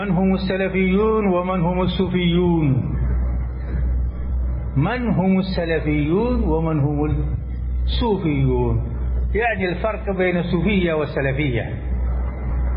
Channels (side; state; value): both; identical; correlation 1.00